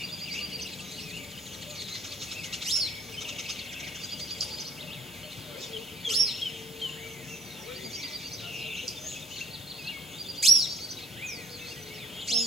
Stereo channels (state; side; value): normal; both; correlation 0.55